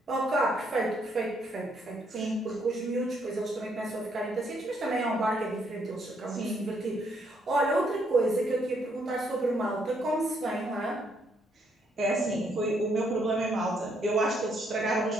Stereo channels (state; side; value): normal; both; correlation 0.72